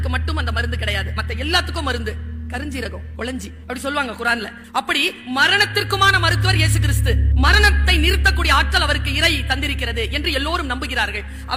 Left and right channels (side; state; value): both; identical; correlation 1.00